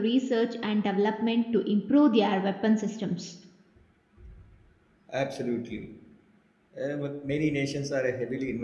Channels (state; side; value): identical; both; correlation 1.00